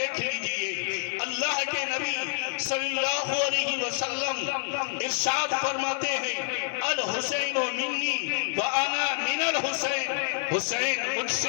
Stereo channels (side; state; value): right; silent; digital silence